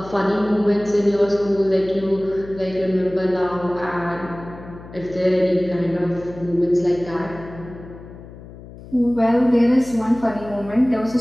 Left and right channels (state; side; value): noise; left; hum, 17 dB below the sound